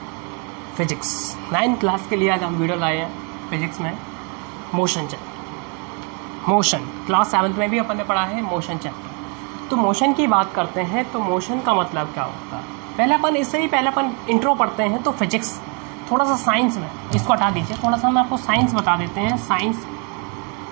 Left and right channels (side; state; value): left; quieter; 35.8 dB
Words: physics. 9th class के लिए आज हम वीडियो लाए हैं फिजिक्स में motion chapter. Motion class 7th में भी अपन ने पढ़ा है मोशन चैप्टर। तो मोशन की बात करते हैं तो मोशन का मतलब क्या होता है, पहले अपन इंट्रो पढ़ते हैं। तो फिजिक्स थोड़ा सा साइंस में, इसको हटा दीजिए, थोड़ा सा हम आपको साइंस बता देते हैं। साइंस